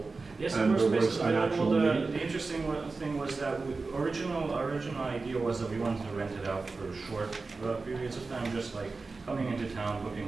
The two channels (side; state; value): left; quieter; 3.9 dB